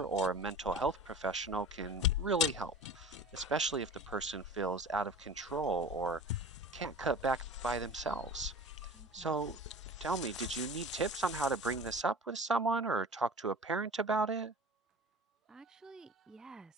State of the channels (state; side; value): normal; both; correlation 0.38